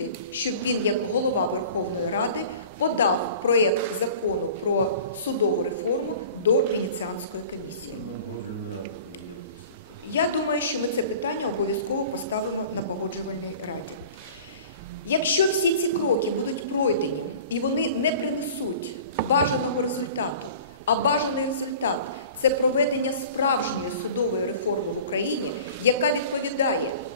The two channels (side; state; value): both; inverted; correlation -0.43